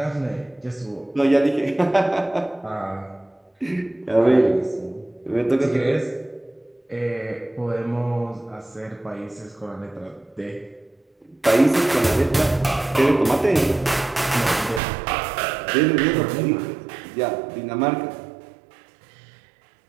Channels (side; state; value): left; drops out; at 14.8 s